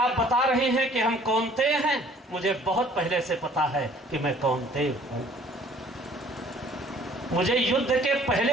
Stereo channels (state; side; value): normal; both; correlation 0.55